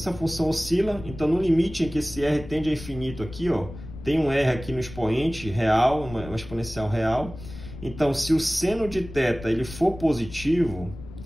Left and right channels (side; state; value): left; noise; rumble, 13 dB below the sound